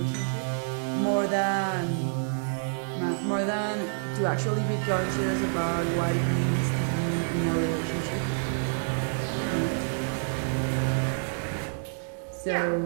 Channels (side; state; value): left; silent; digital silence